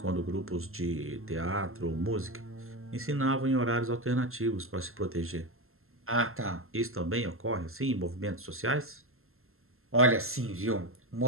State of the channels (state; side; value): late; left; 0.62 ms